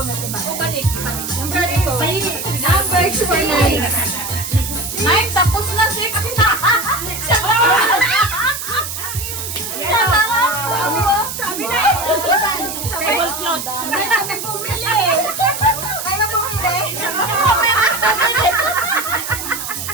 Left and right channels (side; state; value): right; noise; hiss, 6 dB below the sound